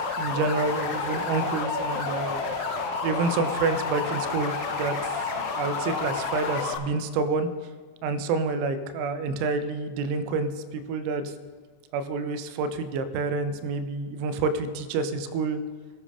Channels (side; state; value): left; late; 29 ms